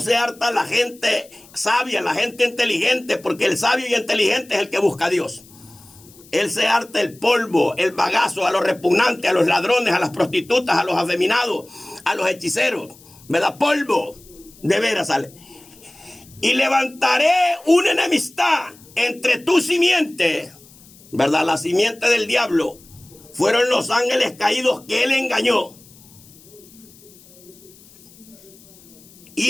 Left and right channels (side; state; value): left; noise; hiss, 24 dB below the sound